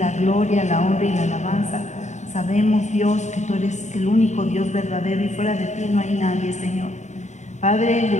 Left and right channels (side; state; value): right; late; 0.34 ms